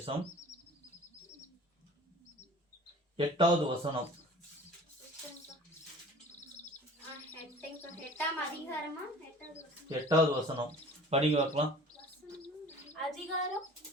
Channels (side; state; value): both; normal; correlation 0.45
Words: 8வது வசனம். 8வது வசனம் படிங்க பார்க்கலாம்.